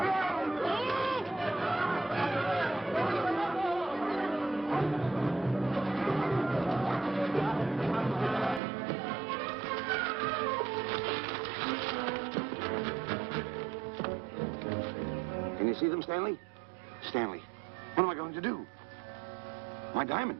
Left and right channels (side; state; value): left; drops out; at 8.6 s